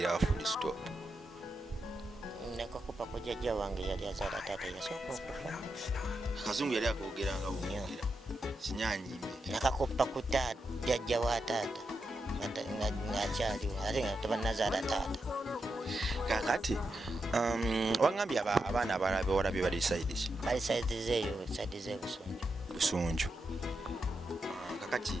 wa Full Stop nakakupa ku jjajja wange yali azaala taata yasooka okufa. Kazungu yali akoogeranga bwogera kinyanyimbe nakakupa ku jjajja wa taata ng'akyaliwo ate nga tebanazaala taata. kakati wangambye abaana abalala bewalabye bali saidi ki? Bali saidi zeeyo saidi z'ebusunju. Kakati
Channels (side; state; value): both; normal; correlation 0.86